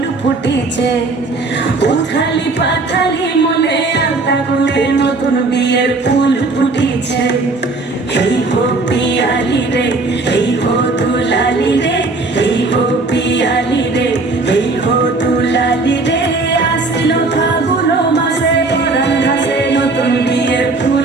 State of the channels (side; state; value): left; quieter; 3.4 dB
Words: ফুটিছে। উথালি পাথালি মনে আলতা কোণে নতুন বিয়ের ফুল ফুটিছে। এই হো পিয়ালি রে, এই হো দুলালি রে, এই হো পিয়ালি রে, এই হো দুলালি রে। আশ্বিন ফাগুন মাসে পরান ঘাসে নতুন বিয়ের